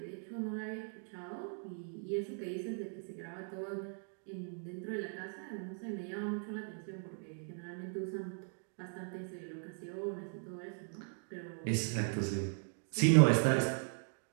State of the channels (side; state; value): left; silent; 52 dB below the other